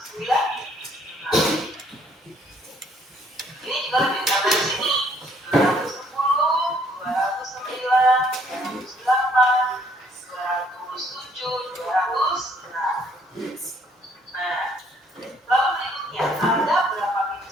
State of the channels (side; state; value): both; normal; correlation 0.64